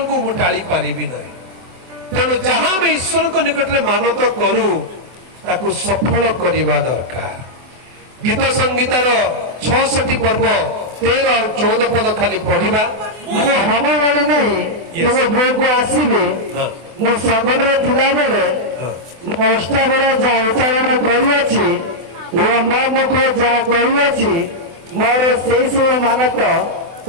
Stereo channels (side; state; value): left; late; 24 ms